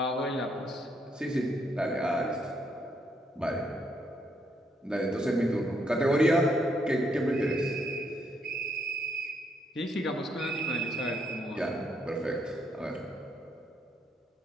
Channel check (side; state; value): both; normal; correlation 0.74